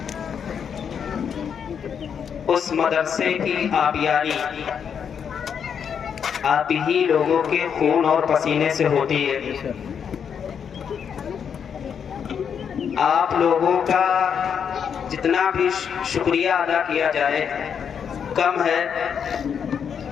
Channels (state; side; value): quieter; right; 7.4 dB